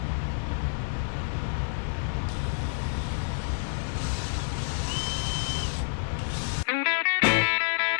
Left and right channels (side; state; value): right; silent; digital silence